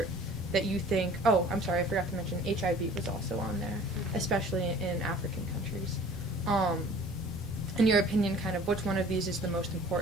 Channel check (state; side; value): normal; both; correlation 0.49